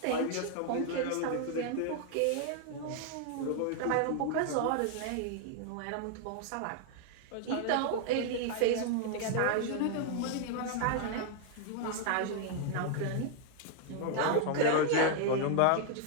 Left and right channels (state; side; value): different; both; correlation 0.00